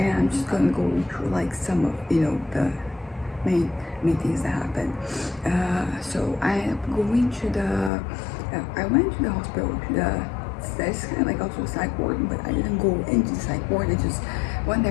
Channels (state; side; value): drops out; right; at 7.9 s